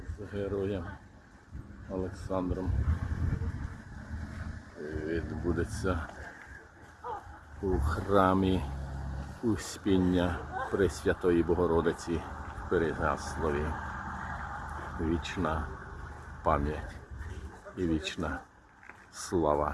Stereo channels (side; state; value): both; identical; correlation 1.00